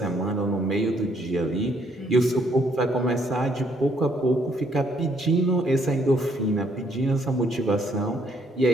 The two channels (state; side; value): normal; both; correlation 0.68